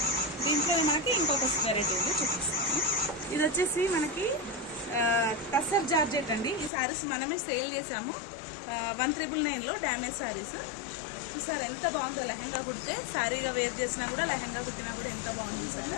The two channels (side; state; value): right; drops out; at 6.7 s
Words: దీంట్లో మనకి ఇంకొక వెరైటీ ఉంది, చూపిస్తాను. ఇది వచ్చేసి మనకి టస్సర్ జార్జెట్ అండి. ఈ శారీస్ మనమే సేల్ చేసాము 1,999లో డ్యామేజ్ శారీస్. చూసారా ఎంత బాగుందో, లెహంగా కుడితే శారీగా వేర్ చేసినా కూడా లెహంగా కుట్టినా కూడా ఎంత బాగుంది